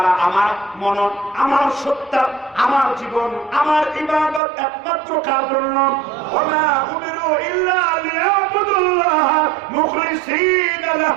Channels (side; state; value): left; drops out; at 4.4 s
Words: আমার মনন, আমার সত্তা, আমার জীবন, আমার ইবাদত একমাত্র কার জন্য? ওয়া উমিরু ইল্লা লিয়াবুদুল্লাহ মুখলিসিনা